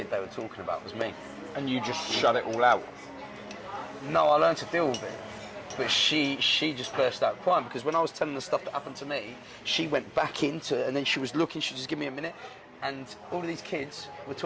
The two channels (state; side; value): identical; both; correlation 1.00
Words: they were talking about was me. And you just shut it all out? No, I learned to deal with it. But she just burst out crying, because when I was telling the stuff that happened to me, she went back into it, and then she was looking, she just give me a minute, and all of these kids were